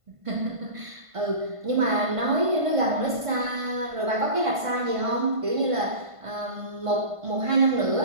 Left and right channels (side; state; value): left; late; 1.5 ms